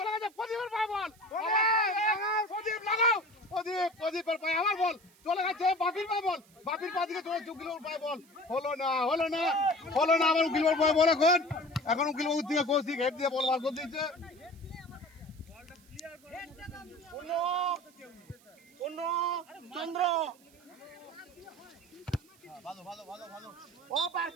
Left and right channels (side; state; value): right; noise; hiss, 28 dB below the sound